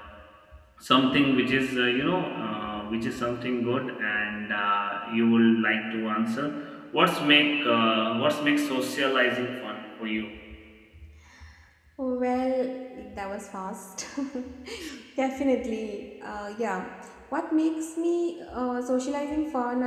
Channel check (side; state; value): both; identical; correlation 1.00